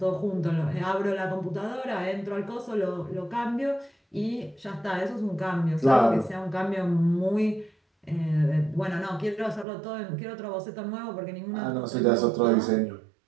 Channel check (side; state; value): left; drops out; at 9.7 s